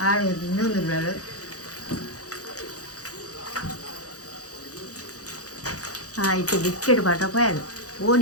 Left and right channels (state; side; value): late; right; 0.67 ms